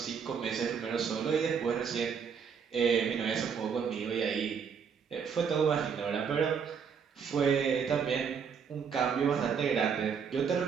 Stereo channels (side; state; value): left; quieter; 6.7 dB